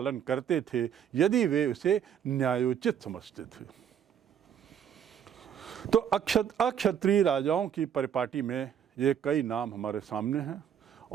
करते थे यदि वे उसे न्यायोचित समझते थे। तो अक्षत्रिय राजाओं की परिपाटी में ये कई नाम हमारे सामने हैं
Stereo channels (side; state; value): left; quieter; 8.8 dB